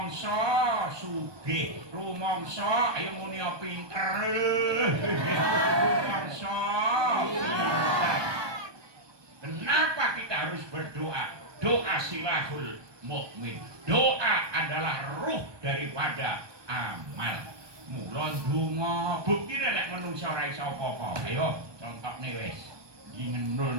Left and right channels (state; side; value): late; left; 1.2 ms